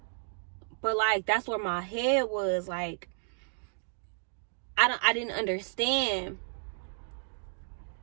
but like that's where my head was. Like, I didn't understand.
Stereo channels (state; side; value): silent; left; 56 dB below the other